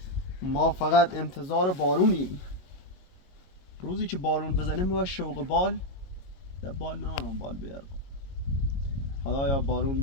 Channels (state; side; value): late; right; 22 ms